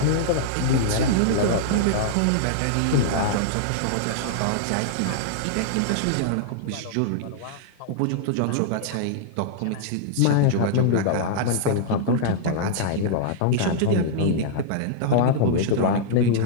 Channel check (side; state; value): both; different; correlation -0.01